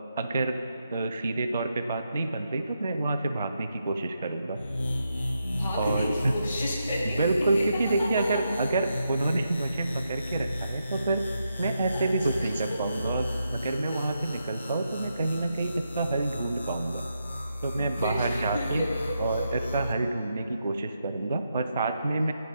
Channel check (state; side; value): inverted; both; correlation -0.83